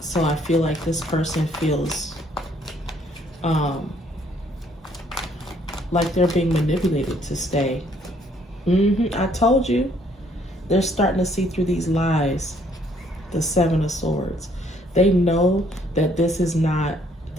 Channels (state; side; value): normal; both; correlation 0.65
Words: I feel like this person feels like they're being manipulated to stay. I told you. They're starting to see through these lies. The Seven of Swords. They know that this is not